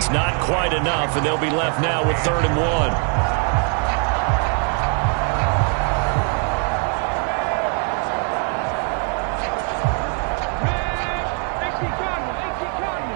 not quite enough, and they'll be left now with 3rd and 1.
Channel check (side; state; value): left; quieter; 37.9 dB